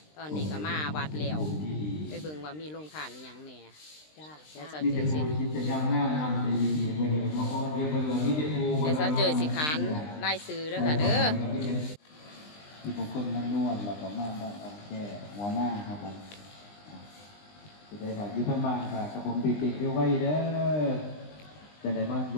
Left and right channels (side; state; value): right; late; 20 ms